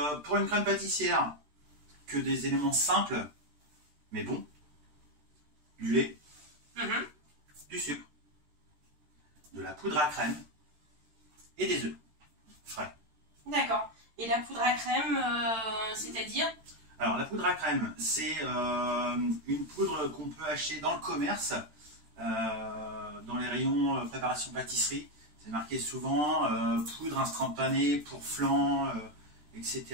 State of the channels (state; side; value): late; left; 13 ms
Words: pour une crème pâtissière, que des éléments simples, mais bons. Du lait, du sucre, de la poudre à crème et des œufs frais. D'accord. Et la poudre à crème, c'est-à-dire? Alors, la poudre à crème, c'est une poudre qu'on peut acheter dans le commerce, dans les rayons préparation pâtisserie. C'est marqué souvent poudre instantanée pour flan, etc.